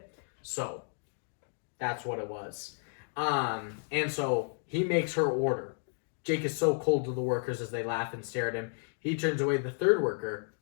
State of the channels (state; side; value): silent; right; 56 dB below the other